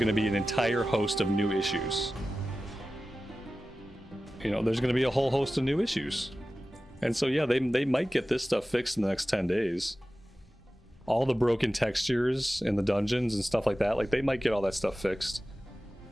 to be an entire host of new issues. You know, there's going to be a whole host of new issues. And so, yeah, they might get this stuff fixed in the next 10 days. All the broken textures in the dungeons and stuff like that, like, they might get all that stuff fixed.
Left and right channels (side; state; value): both; normal; correlation 0.95